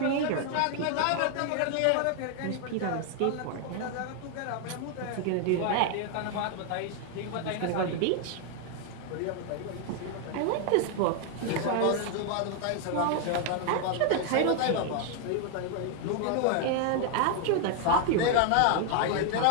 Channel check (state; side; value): different; both; correlation 0.00